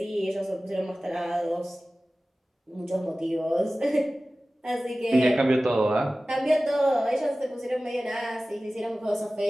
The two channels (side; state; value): both; normal; correlation 0.97